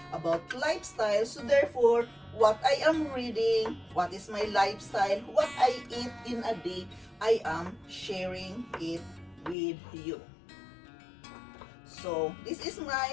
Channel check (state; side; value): drops out; right; at 9.6 s